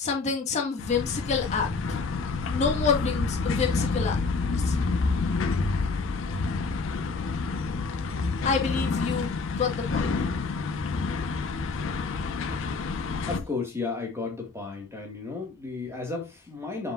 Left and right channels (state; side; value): quieter; right; 4.2 dB